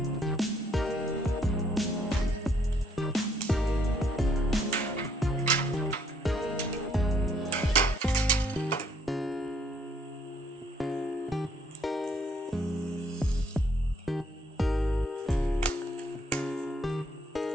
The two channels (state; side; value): normal; both; correlation 0.67